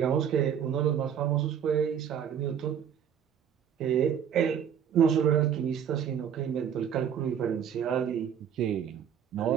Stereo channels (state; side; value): quieter; left; 8.5 dB